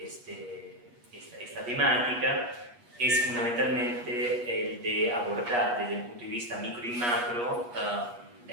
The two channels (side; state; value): left; late; 8.4 ms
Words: temática es fundamentalmente el de abordar desde un punto de vista micro y macro la